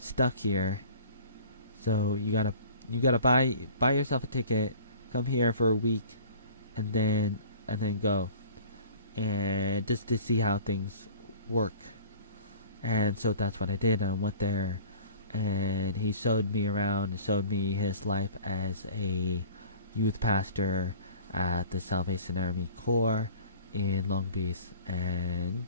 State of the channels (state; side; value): inverted; both; correlation -0.45